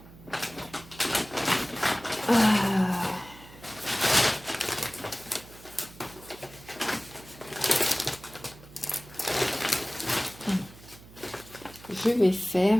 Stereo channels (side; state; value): right; noise; hum, 20 dB below the sound